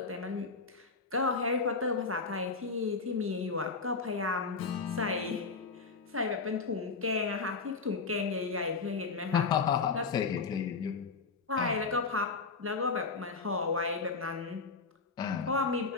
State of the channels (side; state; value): right; quieter; 4.5 dB